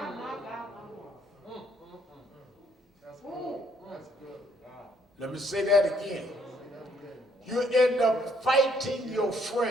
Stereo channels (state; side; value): normal; both; correlation 0.68